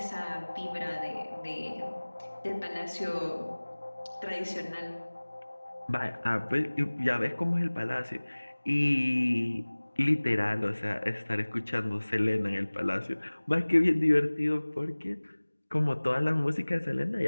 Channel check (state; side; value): inverted; both; correlation -1.00